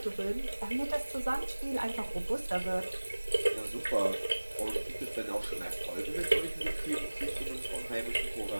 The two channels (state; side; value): inverted; both; correlation -1.00